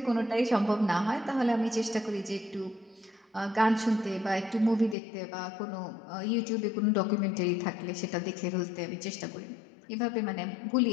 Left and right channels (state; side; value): drops out; right; at 5.0 s